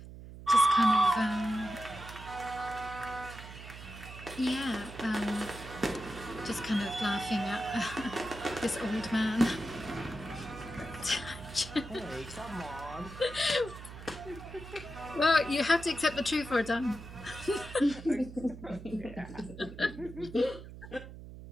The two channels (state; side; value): noise; right; hum, 13 dB below the sound